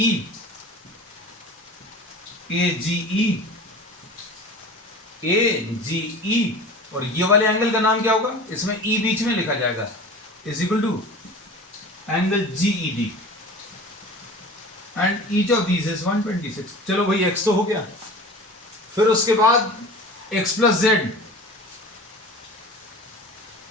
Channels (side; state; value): both; normal; correlation 0.37